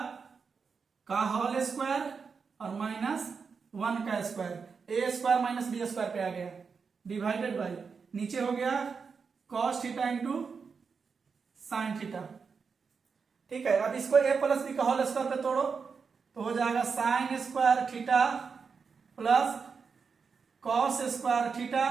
का होल स्क्वायर और -1 का square, a square minus B square पे आ गया, डिवाइडेड बाई, नीचे हो गया cos theta into sine theta. ठीक है। अब इसको a प्लस बी का होल स्क्वायर पे तोड़ो, तो हो जाएगा sign square theta plus cos square theta,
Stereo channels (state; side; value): quieter; left; 5.5 dB